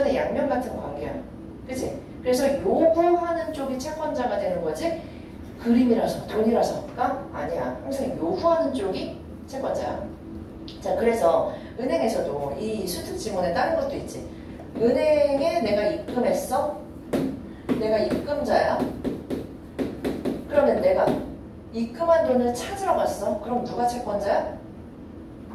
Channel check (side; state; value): both; identical; correlation 1.00